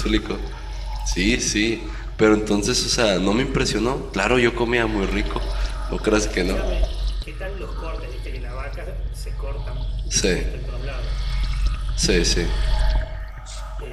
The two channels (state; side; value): identical; both; correlation 1.00